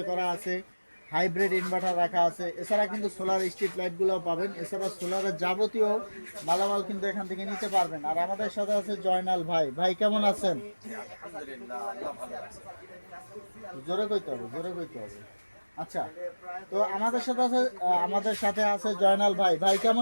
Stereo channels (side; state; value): both; inverted; correlation -1.00